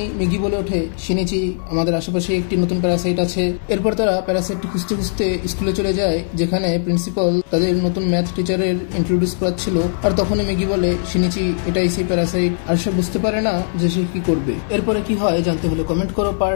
মিগি বলে ওঠে, শিনিচি আমাদের আশেপাশে একটি নতুন প্যারাসাইট আছে। এরপর তারা প্যারাসাইটটি খুঁজতে খুঁজতে স্কুলে চলে যায়, যেখানে প্রিন্সিপাল তাদের নতুন ম্যাথ টিচারের ইন্ট্রোডিউস করাচ্ছিল। আর তখনই মিগি বলে, শিনিচি এটাই সেই প্যারাসাইট। আর সে বুঝতে পারে না যে সে কি করবে। এরপরে কি হয় জানতে হলে কমেন্ট করো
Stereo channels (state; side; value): silent; right; 66 dB below the other